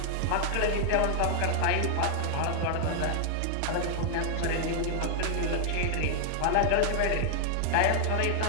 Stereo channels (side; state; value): both; different; correlation 0.00